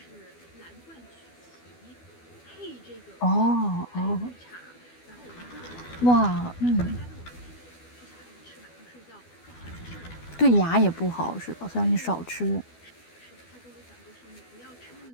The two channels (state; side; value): late; right; 12 ms